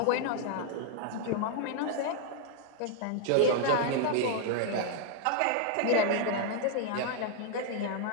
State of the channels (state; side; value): different; both; correlation 0.00